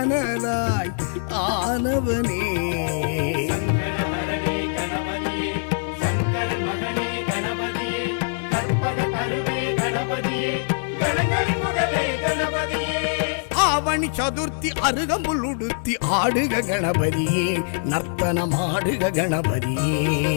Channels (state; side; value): silent; right; digital silence